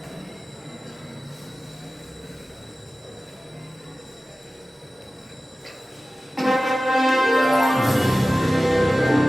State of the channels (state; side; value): normal; both; correlation 0.96